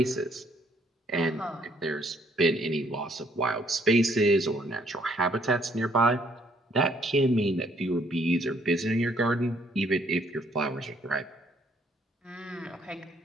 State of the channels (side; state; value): both; normal; correlation 0.66